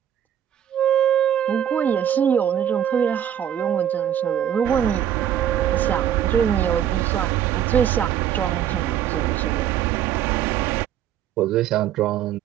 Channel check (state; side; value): quieter; left; 10.1 dB